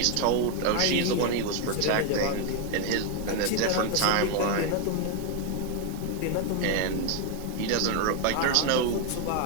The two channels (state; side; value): different; both; correlation 0.01